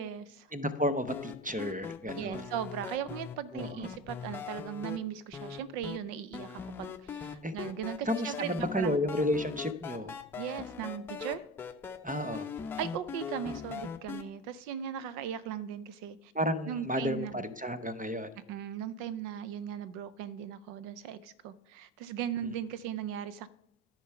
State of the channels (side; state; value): both; normal; correlation 0.28